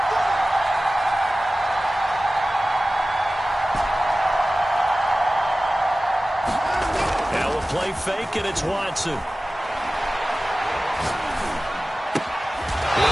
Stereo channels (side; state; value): both; normal; correlation 0.96